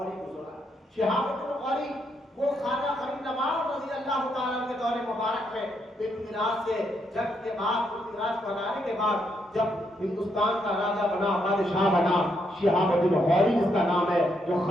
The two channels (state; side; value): normal; both; correlation 0.77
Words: گزرا۔ شہاب الدین غوری وہ خواجہ غریب نواز رضی اللہ تعالیٰ کے دور مبارک میں میراث سے جنگ کے بعد میراث بنانے کے بعد جب ہندوستان کا راجا بنا، بادشاہ بنا، شہاب الدین غوری جس کا نام ہے، جو